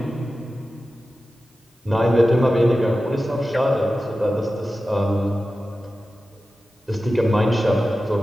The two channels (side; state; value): both; normal; correlation 0.94